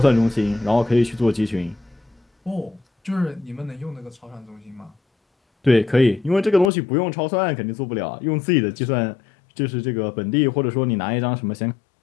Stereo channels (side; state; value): right; drops out; at 6.7 s